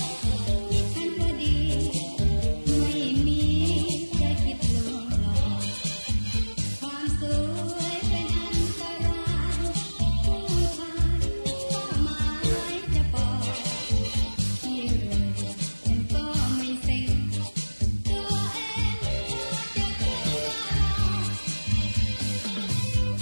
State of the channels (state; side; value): inverted; both; correlation -1.00